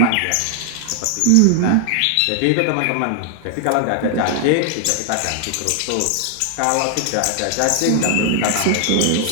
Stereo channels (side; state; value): both; different; correlation 0.00